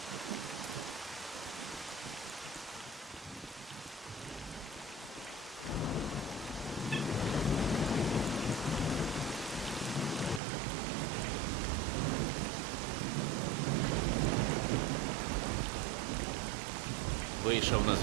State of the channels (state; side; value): drops out; left; at 10.4 s